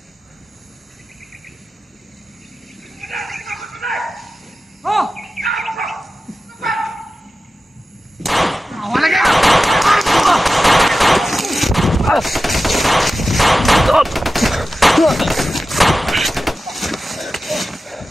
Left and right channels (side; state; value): both; normal; correlation 0.94